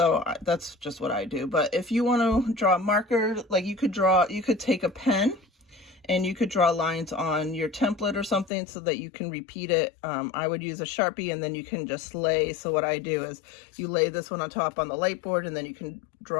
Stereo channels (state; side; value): drops out; right; at 8.5 s